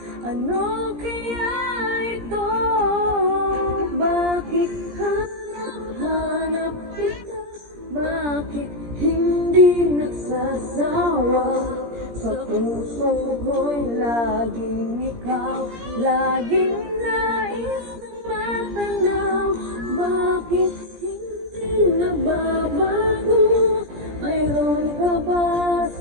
ano kaya ito? Bakit hanap-hanap kita? Bakit hindi nagsasawa? Sa puso ko'y laging ikaw, laging nais na matanaw. Bakit hindi nagbabago? Mayroon ka ba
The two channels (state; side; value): late; left; 17 ms